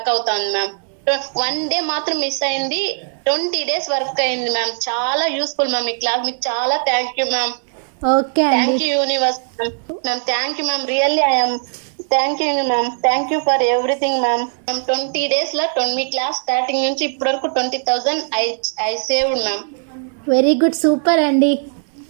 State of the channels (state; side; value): silent; left; 67 dB below the other